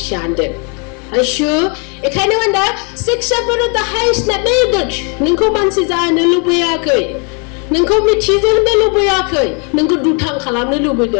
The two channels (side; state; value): right; quieter; 36.5 dB